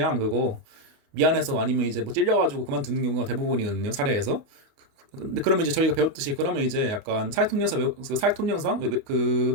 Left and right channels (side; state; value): left; late; 28 ms